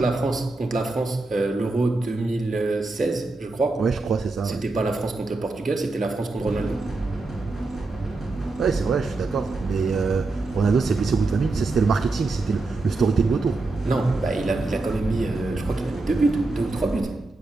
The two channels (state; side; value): quieter; left; 3.4 dB